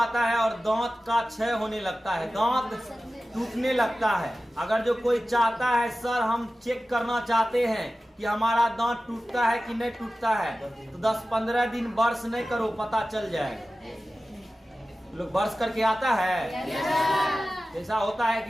है और दांत का क्षय होने लगता है, दांत टूटने लगता है। अगर जो कोई चाहता है सर हम चेक करना चाहते हैं कि हमारा दांत टूटता है कि नहीं टूटता है, तो 10-15 दिन ब्रश नहीं करो, पता चल जाएगा। लोग ब्रश करके आता है, ऐसा होता है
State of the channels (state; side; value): normal; both; correlation 0.95